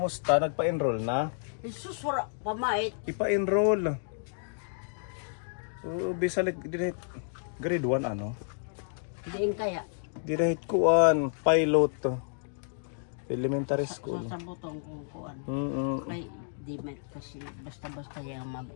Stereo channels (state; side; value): silent; right; digital silence